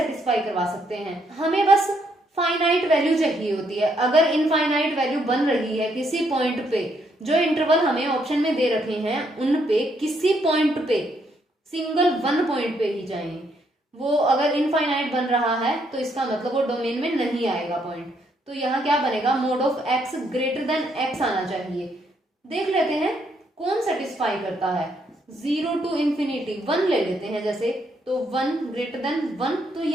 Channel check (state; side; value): normal; both; correlation 0.73